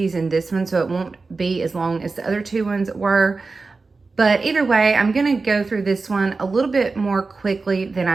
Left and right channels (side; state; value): left; quieter; 4.0 dB